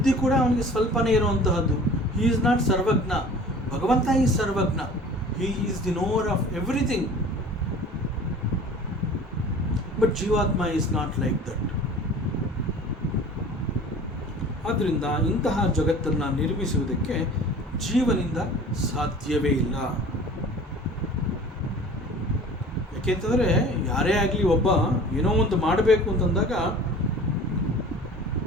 ಕೂಡ ಅವನಿಗೆ ಸ್ವಲ್ಪನೇ ಇರುವಂತಹದ್ದು. ಹಿ ಈಸ್ ನಾಟ್ ಸರ್ವಜ್ಞ. ಭಗವಂತ is Sarvajna. He is the nowhere of everything. But ಜೀವಾತ್ಮ ಈಸ್ ನಾಟ್ ಲೈಕ್ ದಟ್. ಆದ್ದರಿಂದ ಇಂತಹ ಜಗತ್ತನ್ನು ನಿರ್ಮಿಸುವುದಕ್ಕೆ ಜೀವನಿಂದ ಸಾಧ್ಯವೇ ಇಲ್ಲ. ಯಾಕೆಂತಂದರೆ ಯಾರೇ ಆಗಲಿ ಒಬ್ಬ ಏನೋ ಒಂದು ಮಾಡಬೇಕು ಅಂತಂದಾಗ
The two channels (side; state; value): both; normal; correlation 0.44